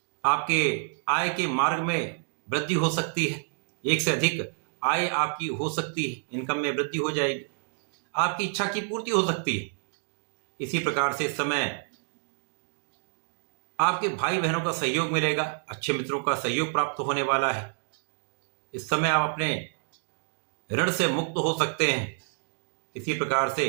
आपके आय के मार्ग में वृद्धि हो सकती है, एक से अधिक आय आपकी हो सकती है, इनकम में वृद्धि हो जाएगी, आपकी इच्छा की पूर्ति हो सकती है। इसी प्रकार से इस समय आपके भाई बहनों का सहयोग मिलेगा, अच्छे मित्रों का सहयोग प्राप्त होने वाला है। इस समय आप अपने ऋण से मुक्त हो सकते हैं। इसी प्रकार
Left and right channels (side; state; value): left; silent; 59 dB below the other